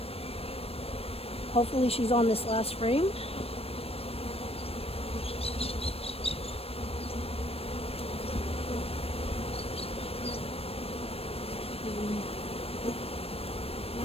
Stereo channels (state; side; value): late; right; 0.28 ms